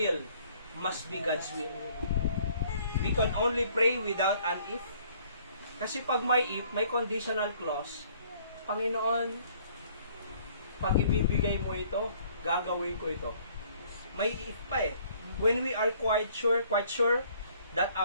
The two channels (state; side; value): inverted; both; correlation -0.60